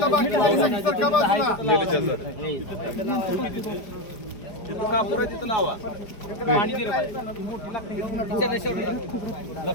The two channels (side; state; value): right; late; 4.9 ms